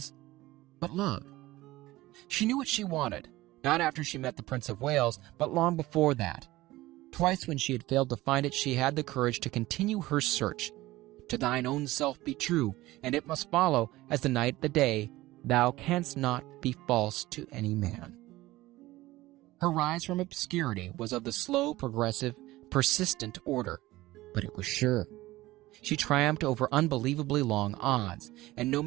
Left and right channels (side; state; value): left; quieter; 17.9 dB